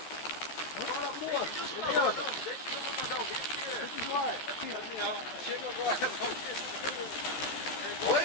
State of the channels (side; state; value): right; late; 13 ms